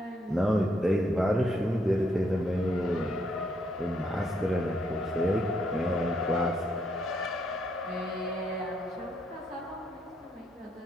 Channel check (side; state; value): both; normal; correlation 0.74